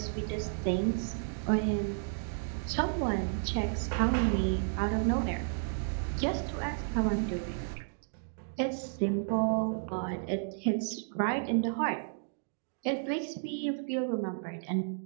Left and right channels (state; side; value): silent; left; digital silence